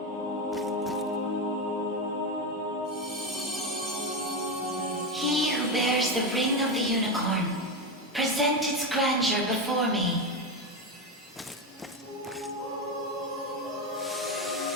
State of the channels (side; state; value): both; normal; correlation 0.13